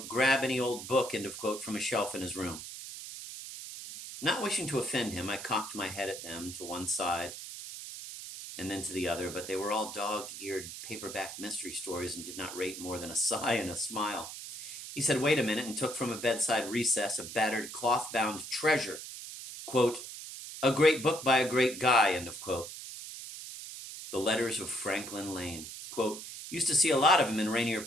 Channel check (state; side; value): noise; right; hiss, 10 dB below the sound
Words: grab any old book, end of quote, from a shelf in his room. Not wishing to offend him, I cocked my head at them to one side and then to the other, but they were all dog-eared paperback mystery stories and did not rate more than a sigh and a smile. He said, wait a minute, and took from a bedside recess a battered cloth-bound treasure. Quote, a great book by a great guy, end of quote. The Letters of Franklin Lane. Quote, used to see a lot of him in Rainier